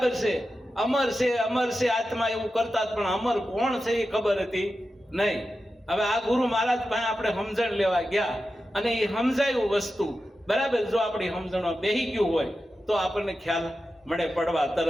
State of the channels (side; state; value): both; normal; correlation 0.91